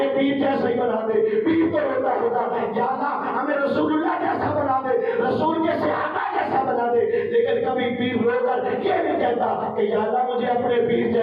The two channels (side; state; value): both; identical; correlation 1.00